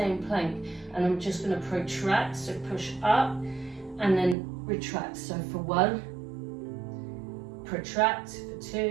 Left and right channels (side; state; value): left; drops out; at 4.4 s